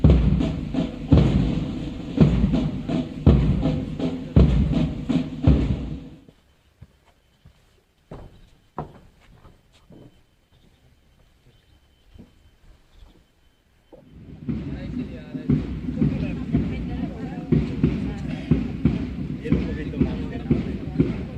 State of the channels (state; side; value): identical; both; correlation 1.00